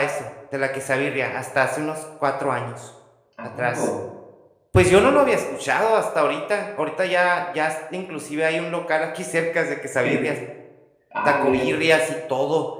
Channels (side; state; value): both; identical; correlation 1.00